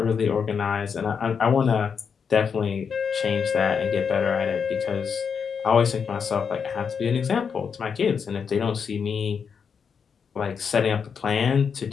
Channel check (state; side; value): quieter; right; 6.4 dB